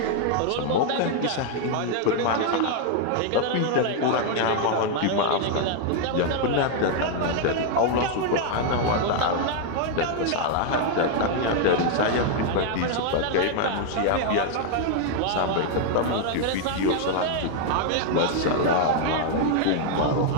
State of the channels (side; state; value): both; different; correlation 0.00